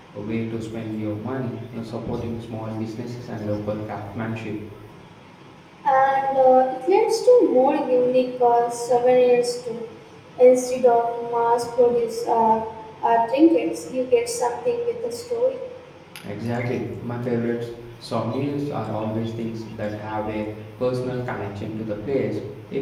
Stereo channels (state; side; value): identical; both; correlation 1.00